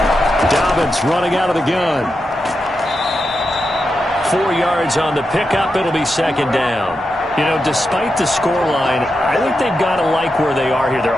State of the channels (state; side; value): normal; both; correlation 0.88